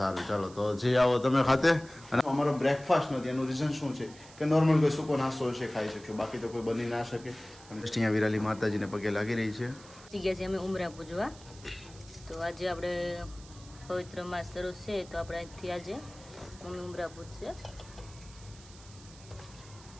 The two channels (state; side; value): noise; right; hiss, 21 dB below the sound